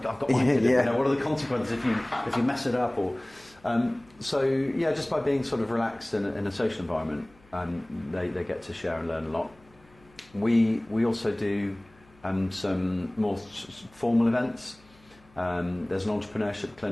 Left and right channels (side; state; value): left; noise; hum, 28 dB below the sound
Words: I've got my kid. Yeah. What are the consequences if you mess it up? Or just by being sort of relaxed in a social environment, they get to share and learn a lot. We also do some more formal events. There's an entrepreneurship